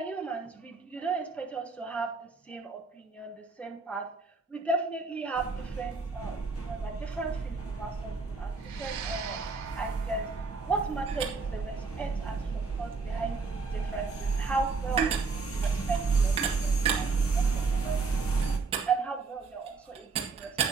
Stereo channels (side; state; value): left; quieter; 4.5 dB